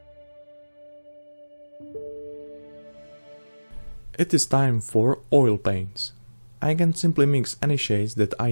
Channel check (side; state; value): both; inverted; correlation -1.00